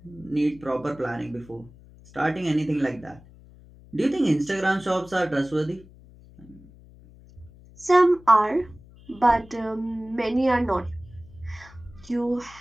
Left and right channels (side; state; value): left; noise; hum, 23 dB below the sound